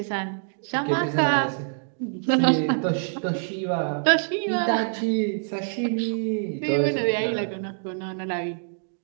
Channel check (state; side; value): silent; left; 61 dB below the other